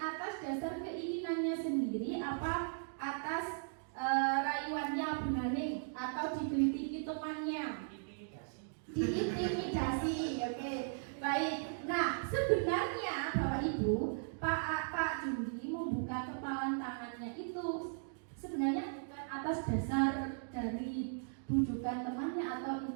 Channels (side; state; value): left; silent; digital silence